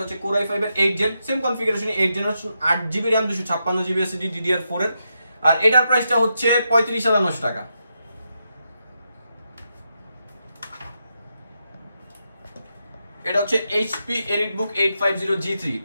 হচ্ছে Core i5 এর 8 gen, same configuration 8 generation 8GB RAM 256GB SSD DDR4 এর। আর এটার প্রাইসটা হচ্ছে 35,900 টাকা। এটা হচ্ছে HP EliteBook 850G3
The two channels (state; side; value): inverted; both; correlation -0.85